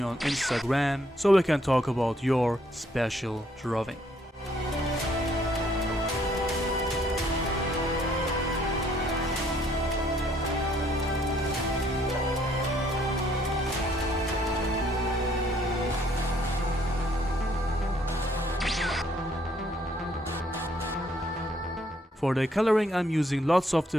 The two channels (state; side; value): normal; both; correlation 0.66